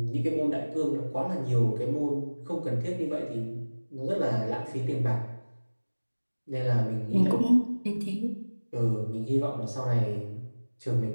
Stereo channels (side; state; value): both; inverted; correlation -1.00